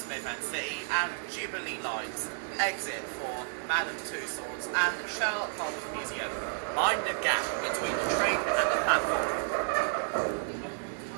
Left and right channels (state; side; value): silent; left; digital silence